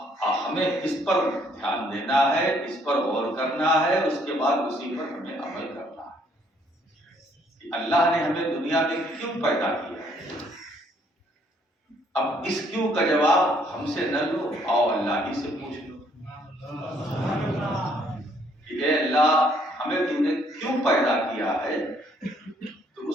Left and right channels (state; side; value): normal; both; correlation 0.66